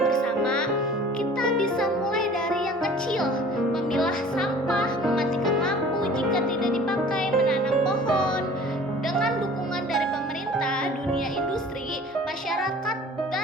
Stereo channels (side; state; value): both; normal; correlation 0.47